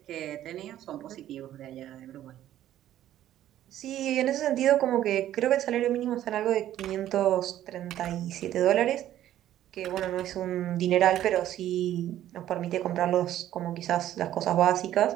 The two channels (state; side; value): quieter; left; 12.5 dB